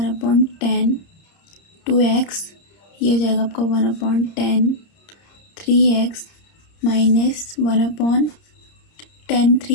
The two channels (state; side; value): late; right; 30 ms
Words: 2x, ये हो जाएगा आपका 1/10 3x minus 1/10